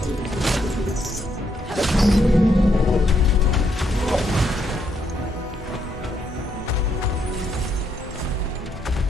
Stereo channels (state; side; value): normal; both; correlation 0.75